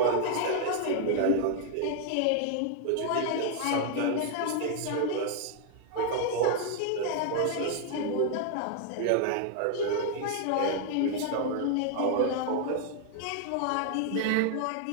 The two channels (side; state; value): both; different; correlation 0.00